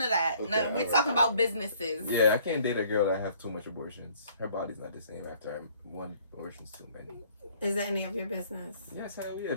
of that. Okay, No, we're alright. talking about businesses. Yeah, I can't date a girl that have too much abortions. Her body's not the same after one abortion's too many. Is that any of your business? Yes, hell yeah.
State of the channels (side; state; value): both; inverted; correlation -0.59